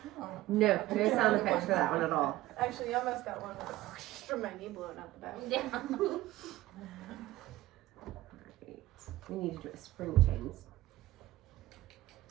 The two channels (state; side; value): quieter; left; 16.8 dB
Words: No, no sound effects for that one at all. Actually, you almost got one from my knee blowing out the back. Yeah. Right. We need to do a spring chains.